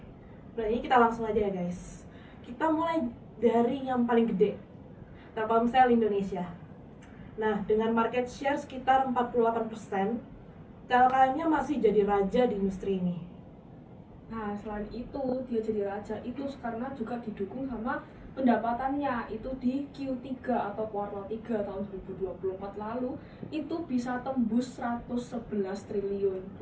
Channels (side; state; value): both; identical; correlation 1.00